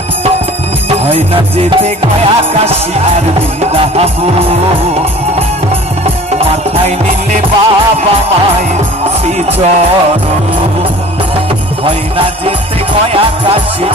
হয় না যেতে গয়া কাশী আর বৃন্দাবন, মাথায় নিলে বাবা মায়ের শ্রীচরণ। হয় না যেতে গয়া কাশী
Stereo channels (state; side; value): normal; both; correlation 0.45